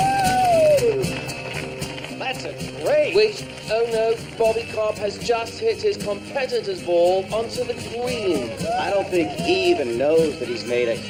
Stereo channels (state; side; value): identical; both; correlation 1.00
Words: That's a great. With Oh no, Bobby Cobb has just hit his competitor's ball onto the green. I don't think he even knows that he's made a